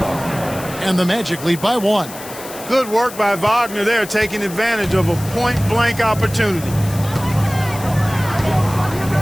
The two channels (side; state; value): left; noise; hiss, 14 dB below the sound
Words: And the Magic lead by 1. Good work by Wagner there, taking advantage of a point-blank opportunity.